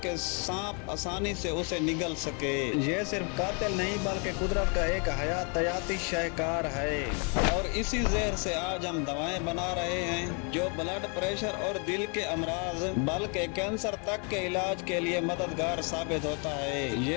सांप आसानी से उसे निगल सके। ये सिर्फ कातिल नहीं बल्कि कुदरत का एक हयातियाती शाहकार है। और इसी जहर से आज हम दवाएं बना रहे हैं जो ब्लड प्रेशर और दिल के अमराज बल्कि कैंसर तक के इलाज के लिए मददगार साबित होता है।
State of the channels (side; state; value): right; quieter; 36.6 dB